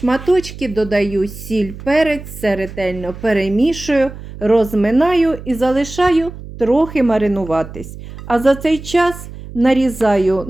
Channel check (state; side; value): noise; right; hum, 13 dB below the sound